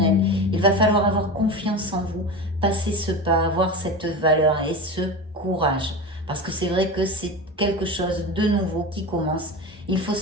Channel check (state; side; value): normal; both; correlation 0.26